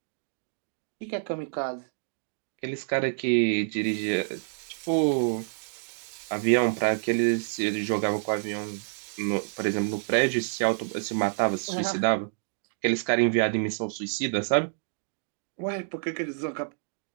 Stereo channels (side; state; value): left; silent; digital silence